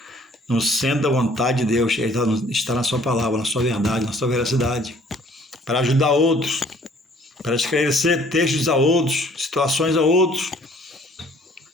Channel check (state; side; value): normal; both; correlation 0.57